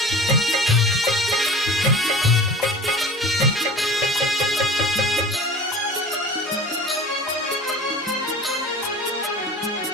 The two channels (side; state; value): both; normal; correlation 0.39